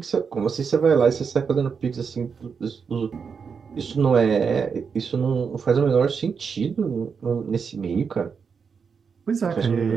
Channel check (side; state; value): left; quieter; 6.0 dB